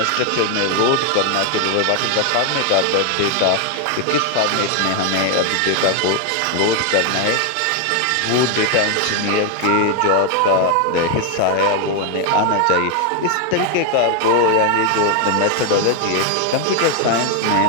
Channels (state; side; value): different; both; correlation 0.01